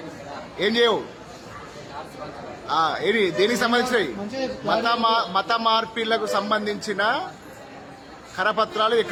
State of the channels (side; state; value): both; identical; correlation 1.00